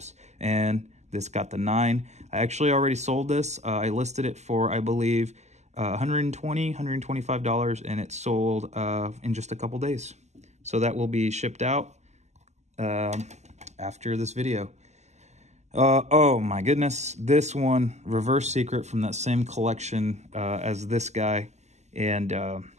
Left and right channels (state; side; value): late; left; 0.33 ms